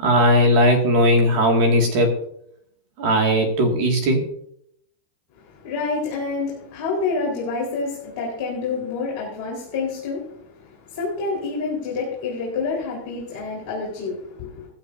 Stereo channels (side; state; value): left; late; 13 ms